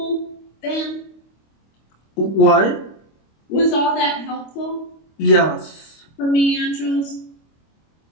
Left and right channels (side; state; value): right; late; 25 ms